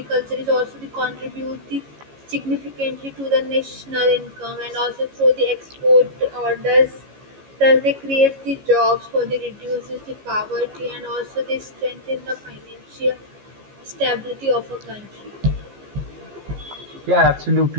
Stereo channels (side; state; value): left; late; 15 ms